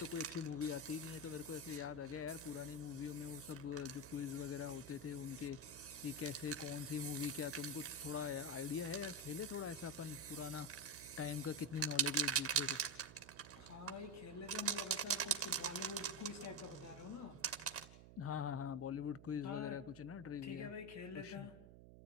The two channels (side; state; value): right; noise; hum, 16 dB below the sound